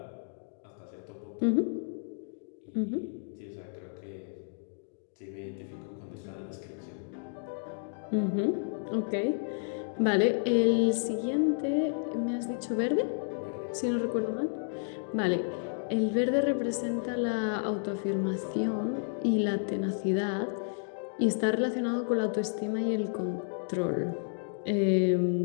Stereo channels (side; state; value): right; silent; digital silence